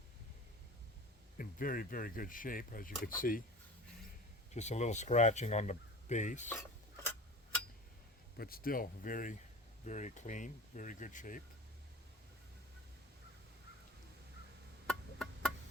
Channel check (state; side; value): normal; both; correlation 0.36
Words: in very, very good shape, as you can see. Just a little scratching on the base, but still very, very clean, very good shape.